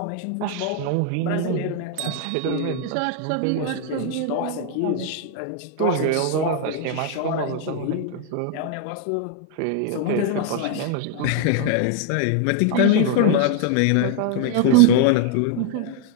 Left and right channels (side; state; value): both; different; correlation 0.00